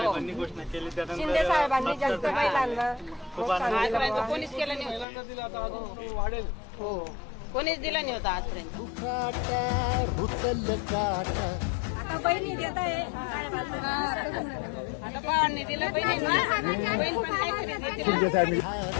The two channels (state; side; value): drops out; right; at 5.1 s